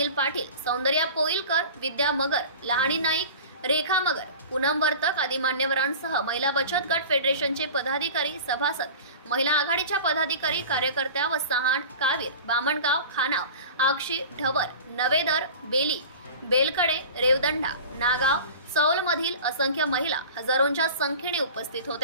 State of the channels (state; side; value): inverted; both; correlation -0.37